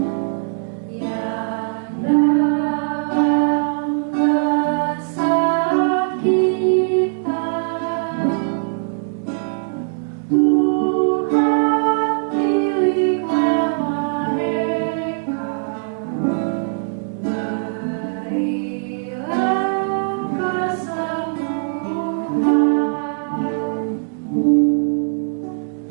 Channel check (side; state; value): left; silent; digital silence